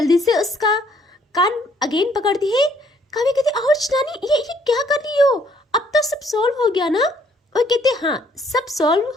से उसका कान अगेन पकड़ती है। काव्या कहती आउच नानी, ये क्या कर रही हो? अब तो सब सॉल्व हो गया ना? और कहते हाँ सब सॉल्व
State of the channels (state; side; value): normal; both; correlation 0.65